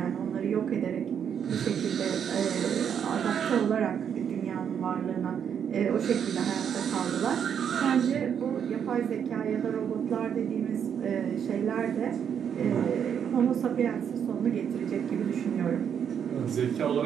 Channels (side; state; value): left; quieter; 8.1 dB